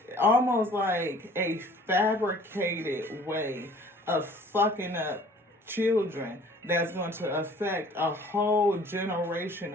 almost like a fabricated way of fucking up children that's going to affect a whole generation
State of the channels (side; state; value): both; normal; correlation 0.52